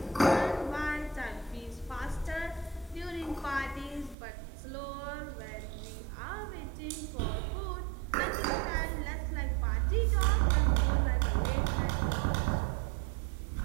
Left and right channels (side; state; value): left; drops out; at 4.2 s